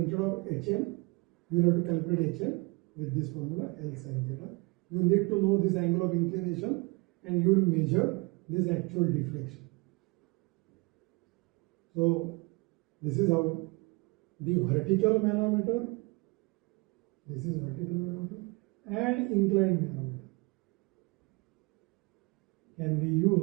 of HM, you will have to calculate HM with this formula L sin theta. You need to know this angle of inclination, and you will measure this actual deflection. So this is how the vertical manometer, this is vertical manometer, and inclined manometer can be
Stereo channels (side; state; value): left; quieter; 26.9 dB